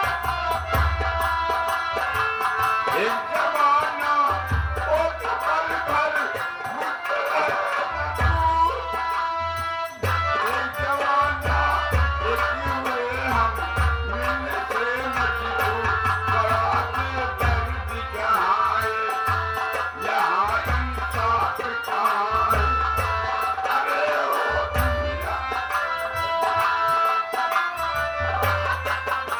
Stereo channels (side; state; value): both; identical; correlation 1.00